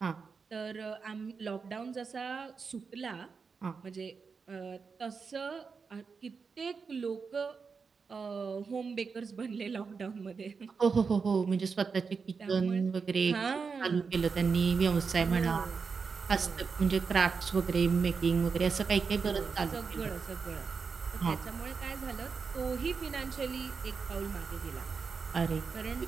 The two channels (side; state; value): left; quieter; 5.3 dB